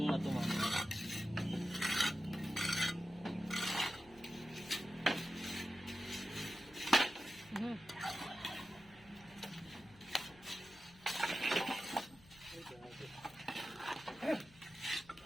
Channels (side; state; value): left; noise; hum, 24 dB below the sound